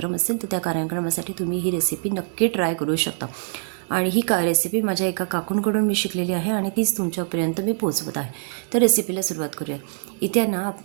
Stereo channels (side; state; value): left; silent; digital silence